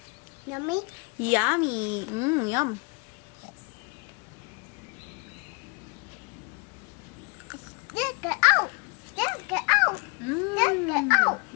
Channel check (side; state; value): right; quieter; 32.0 dB